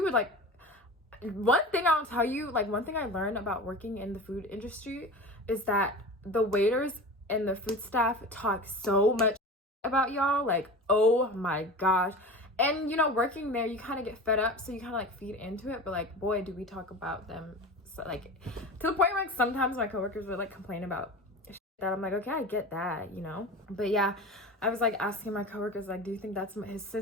would like, one thing I'll tell you, like one thing I learned about working in the food industry is that the waiters and the food staff talk so much about y'all, like, oh my gosh. And you know, working there, you kind of get fed up, so you kind of like feed into it. But like, boy, do we talk about them, so, like, to the point where like sometimes my coworkers would like complain about that. I'm like, okay, I get that, you know. But yeah, I was like asking my coworkers, like, do you think that's his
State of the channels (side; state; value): both; normal; correlation 0.32